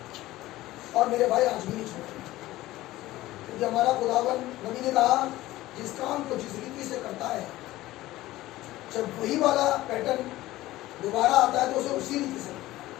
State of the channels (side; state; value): right; quieter; 16.7 dB